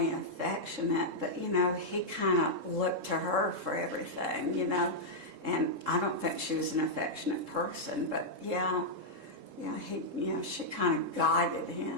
affectionate, but he kind of looked to her for everything, and I don't think she was an affectionate person, but yeah, she kind of guided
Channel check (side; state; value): left; late; 3.7 ms